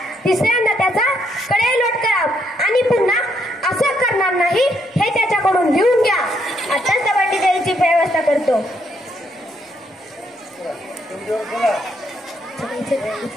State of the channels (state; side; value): normal; both; correlation 0.74